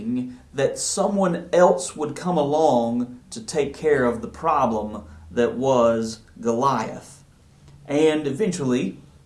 that someone else would come along to take care of the problem that was Goliath. And eventually,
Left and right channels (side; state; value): both; identical; correlation 1.00